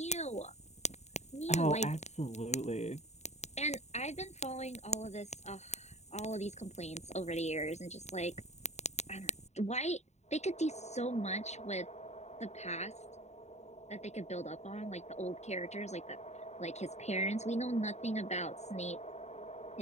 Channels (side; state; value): right; late; 0.32 ms